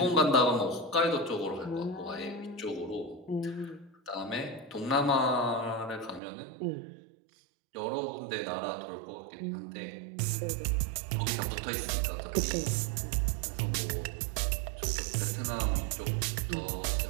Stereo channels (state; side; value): drops out; left; at 6.2 s